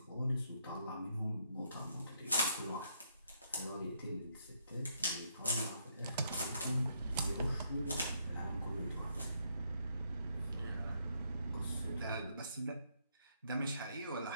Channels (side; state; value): both; inverted; correlation -0.73